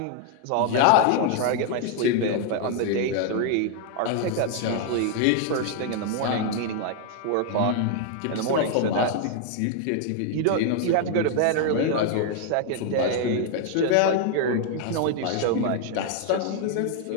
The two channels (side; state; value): both; different; correlation 0.00